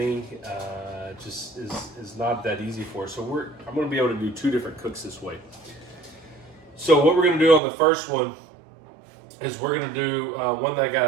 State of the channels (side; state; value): left; drops out; at 7.6 s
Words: just is not that easy for us. So I'm going to be able to do two different cooks this way. So what we're going to do on the first one is we're going to do one that I got